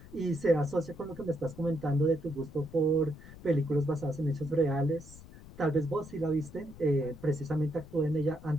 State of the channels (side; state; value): left; noise; rumble, 17 dB below the sound